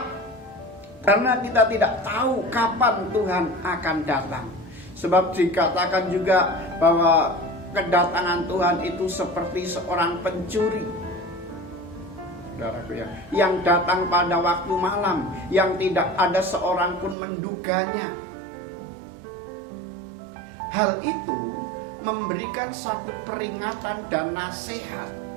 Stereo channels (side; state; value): left; drops out; at 17.2 s